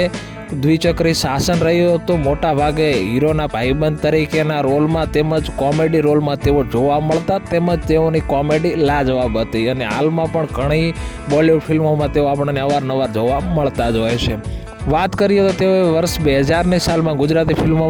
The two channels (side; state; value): both; identical; correlation 1.00